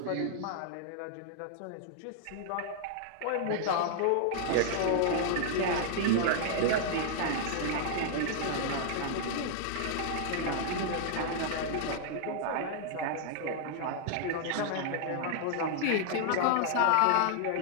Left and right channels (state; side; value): different; both; correlation -0.01